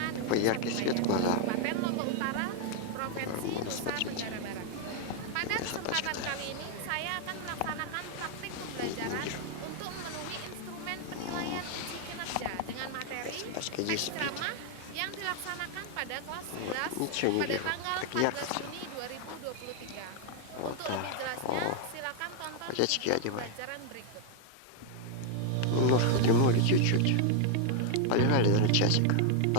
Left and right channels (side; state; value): both; different; correlation 0.00